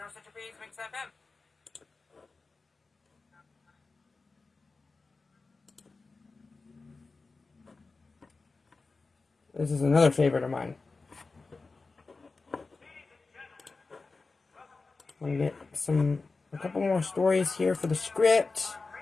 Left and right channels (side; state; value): right; quieter; 3.9 dB